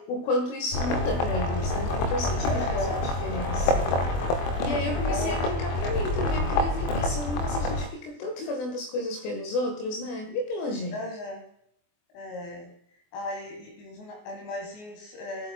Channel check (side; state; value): right; late; 24 ms